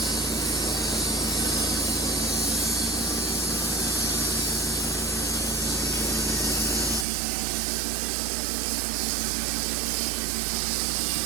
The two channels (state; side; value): drops out; left; at 7.1 s